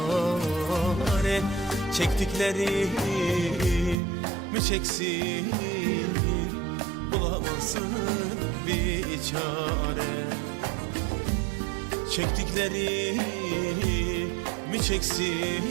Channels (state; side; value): drops out; left; at 4.0 s